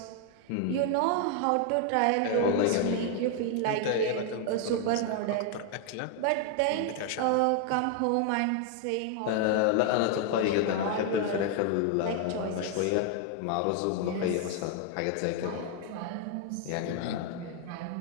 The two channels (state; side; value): different; both; correlation 0.00